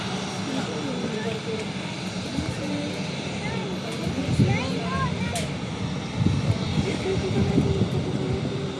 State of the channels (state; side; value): identical; both; correlation 1.00